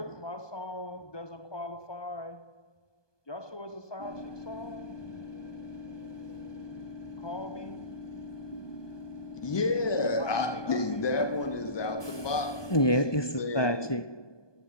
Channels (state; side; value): late; right; 1.2 ms